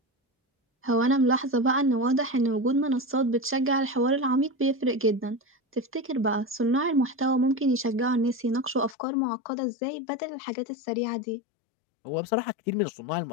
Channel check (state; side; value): drops out; right; at 9.0 s